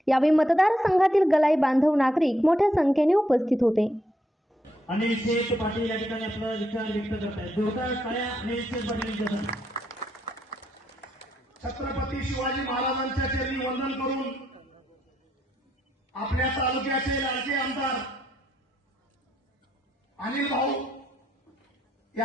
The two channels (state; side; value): normal; both; correlation 0.77